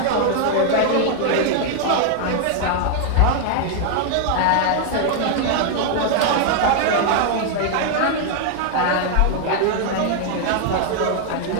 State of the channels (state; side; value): different; both; correlation 0.00